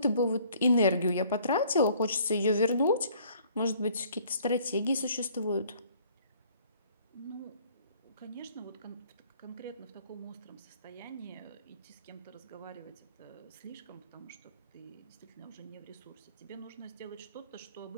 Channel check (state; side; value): inverted; both; correlation -0.58